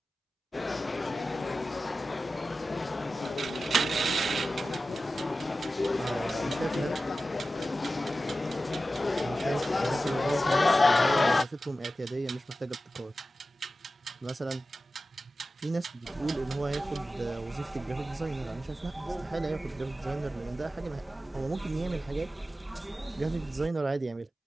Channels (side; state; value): both; normal; correlation 0.94